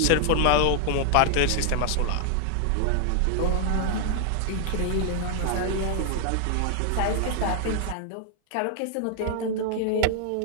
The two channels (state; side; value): different; both; correlation 0.00